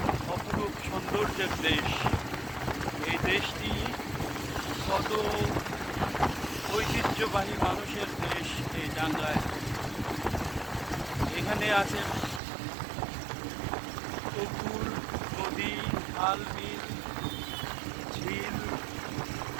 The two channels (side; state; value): left; drops out; at 12.4 s